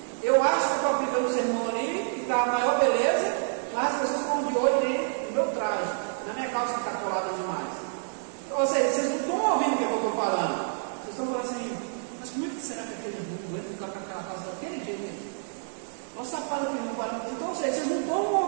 Eu acho que estou aplicando o sermão ali, que está a maior beleza, mas as pessoas estão de olho ali no meu traje, na minha calça que está colada demais. Ou seja, vocês não estão ouvindo o que eu estou falando, vocês estão falando assim, mas como é que será que aquele mundo vai ficar com aquela calça daquele jeito? Olha o sapato que não para. Então, ou seja, vocês não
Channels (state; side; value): silent; left; 58 dB below the other